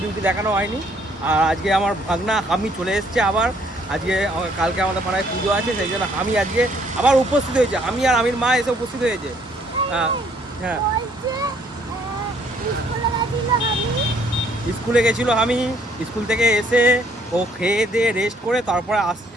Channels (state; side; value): normal; both; correlation 0.64